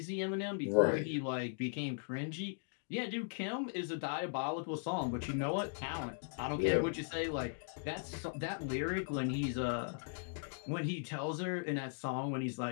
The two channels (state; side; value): silent; right; digital silence